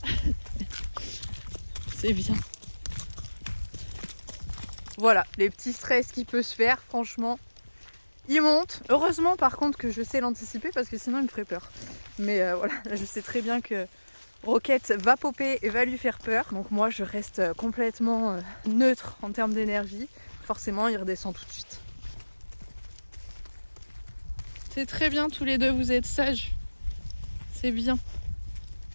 C'est bien. Voilà, les petits stress qui peut se faire, franchement. Il monte. Heureusement par contre que je sais l'anticiper parce que sinon il me ferait peur. Mais voilà, je sais très bien que Roquette va popper et va lui faire peur. Donc moi je reste complètement neutre en termes d'énergie. Forcément il redescend tout de suite. C'est très bien tous les deux, vous êtes sages. C'est bien.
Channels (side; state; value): both; inverted; correlation -1.00